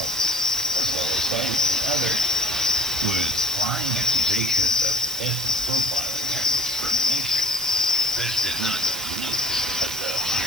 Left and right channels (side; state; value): right; noise; hiss, 8 dB below the sound